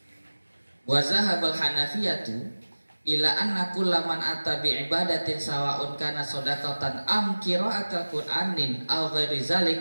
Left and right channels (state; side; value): inverted; both; correlation -1.00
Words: Wa zahabal Hanafiyatu ila anna kullaman ata bi ibadatin sawa'un kana shadaqatan am qira'atul Qur'anin aw ghairi